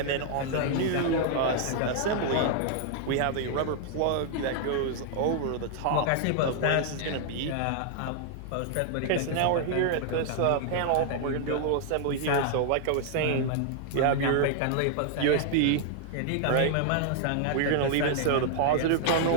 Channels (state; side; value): different; both; correlation 0.00